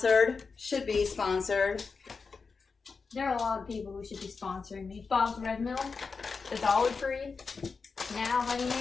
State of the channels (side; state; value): right; quieter; 4.8 dB